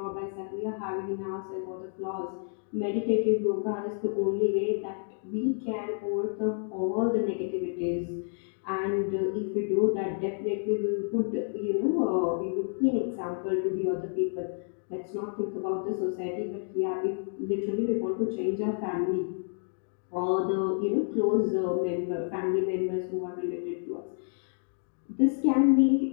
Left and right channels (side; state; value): right; silent; 58 dB below the other